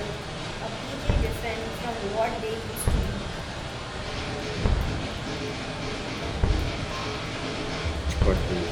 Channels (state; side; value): identical; both; correlation 1.00